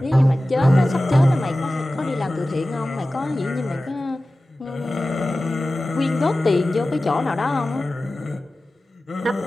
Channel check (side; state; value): both; normal; correlation 0.96